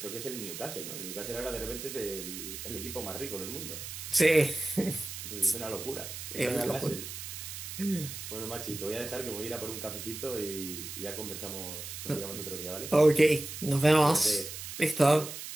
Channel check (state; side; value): noise; right; hiss, 9 dB below the sound